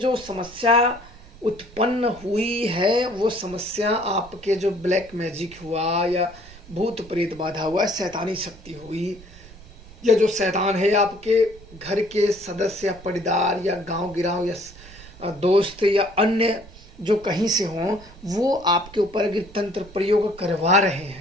समस्या उत्पन्न हुई है वो समस्या आपके जो ब्लैक मैजिक हुआ या भूत प्रेत बाधा हुआ, शैतानी शक्ति हुई, या जो शैतान है आपके घर के सदस्य या परिवार या गांव गिराव या दोस्त या अन्य जो कहीं से हों, वो आपके ऊपर अगर तंत्र प्रयोग करवा रहे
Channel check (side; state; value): right; noise; rumble, 20 dB below the sound